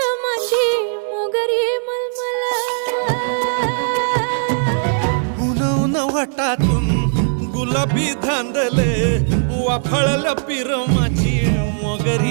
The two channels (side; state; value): left; silent; digital silence